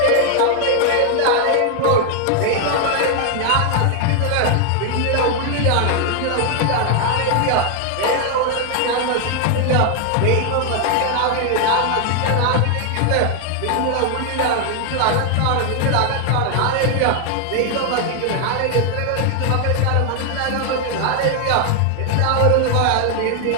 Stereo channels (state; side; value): different; both; correlation 0.00